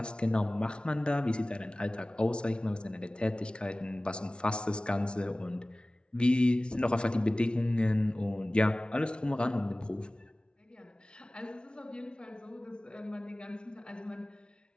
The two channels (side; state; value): right; late; 0.057 ms